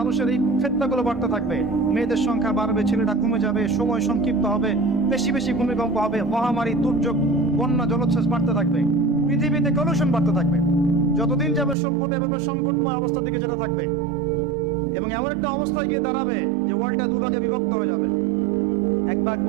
এই ফিতনাগুলো বাড়তে থাকবে। মেয়েদের সংখ্যা বাড়বে, ছেলেরা কমে যাবে, সময় সংক্ষিপ্ত হবে, বেশি বেশি ভূমিকম্প হবে, মহামারী, দুর্যোগ, বন্যা, জলোচ্ছ্বাস বাড়তে থাকবে, পৃথিবীতে কলুষণ বাড়তে থাকবে। যতদিন যাবে সভ্যতা এভাবে সংকটময় অবস্থা দিকে যেতে থাকবে, এবং এমন একটা অবস্থায় গিয়ে দাঁড়াবে যে ওয়ার্ল্ডটা দুভাগে বিভক্ত হয়ে যাবে, এক ভাগ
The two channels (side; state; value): left; drops out; at 11.8 s